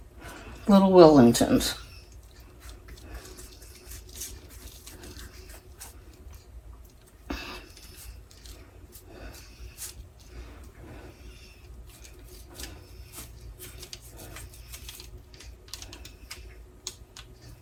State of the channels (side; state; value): both; identical; correlation 1.00